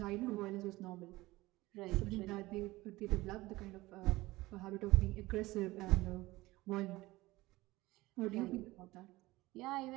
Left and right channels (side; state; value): left; quieter; 19.3 dB